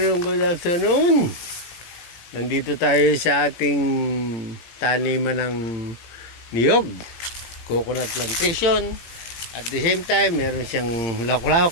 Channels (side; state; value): right; late; 17 ms